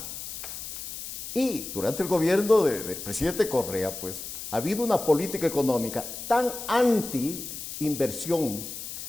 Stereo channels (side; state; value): left; noise; hiss, 9 dB below the sound